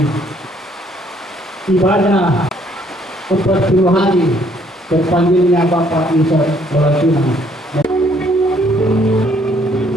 ibadah 40 hari terpanggilnya Bapak Musa Walatuna.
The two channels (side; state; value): both; normal; correlation 0.65